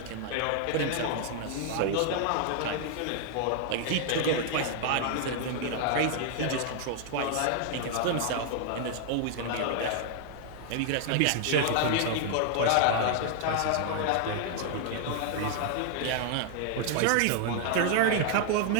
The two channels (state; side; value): different; both; correlation 0.00